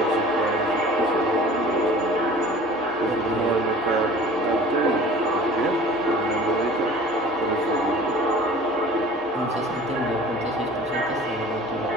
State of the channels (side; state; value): both; normal; correlation 0.45